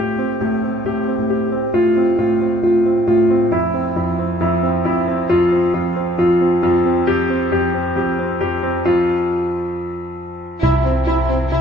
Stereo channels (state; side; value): normal; both; correlation 0.61